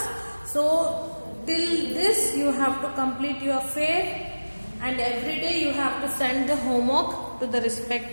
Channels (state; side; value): inverted; both; correlation -1.00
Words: So till this you have to complete your fair, and every day you have to send the homework to the